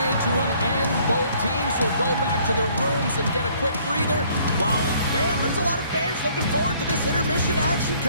to an end. Both teams will go back to their rooms and get a quick breather. While, man, there's a lot of fans looking forward to this intermission action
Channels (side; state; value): both; inverted; correlation -0.61